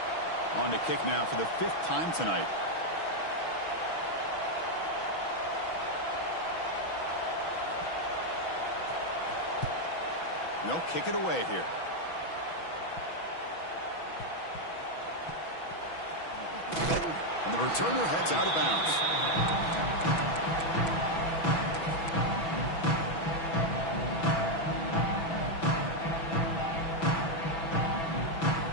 On to kick now for the 5th time tonight. They'll kick it away here. And the returner heads out of bounds.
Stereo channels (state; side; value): late; right; 6.1 ms